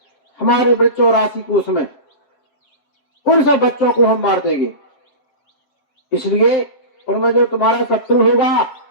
हमारे बच्चों राशि कोष में, उन सब बच्चों को हम मार देंगे। इसलिए उनमें जो तुम्हारा शत्रु होगा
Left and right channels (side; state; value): right; late; 7.7 ms